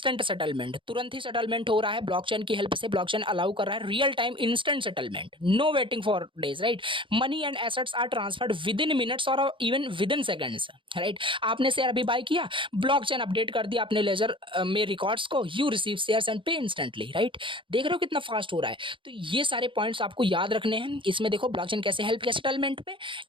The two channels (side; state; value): left; late; 0.25 ms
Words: सेटलमेंट, तुरंत ही सेटलमेंट हो रहा है ब्लॉकचेन की हेल्प से। ब्लॉकचेन अलाउ कर रहा है real time instant settlement, no waiting for days, right. Money and assets are transferred within minutes और even within seconds, right. आपने शेयर अभी बाय किया, ब्लॉकचेन अपडेट कर दिया अपने लेजर में रिकॉर्ड्स को, you receive shares and pay instantly, right. देख रहे हो कितना फास्ट हो रहा है। तो ये सारे पॉइंट्स आपको याद रखने हैं। इसमें देखो ब्लॉकचेन कैसे हेल्प किया सेटलमेंट में,